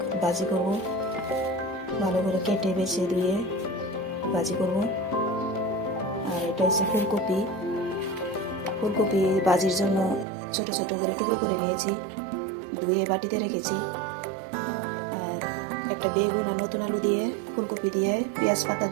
ভাজি করব। ভালো করে কেটে বেছে ধুয়ে ভাজি করব। আর এটা হচ্ছে ফুলকপি। ফুলকপি ভাজির জন্য ছোট ছোট করে টুকরো করে নিয়েছি, ধুয়ে বাটিতে রেখেছি। আর একটা বেগুন আর নতুন আলু দিয়ে, ফুলকপি দিয়ে, পেঁয়াজ পাতা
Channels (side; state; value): left; drops out; at 10.2 s